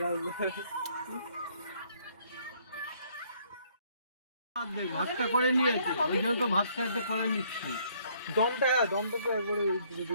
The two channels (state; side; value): inverted; both; correlation -0.65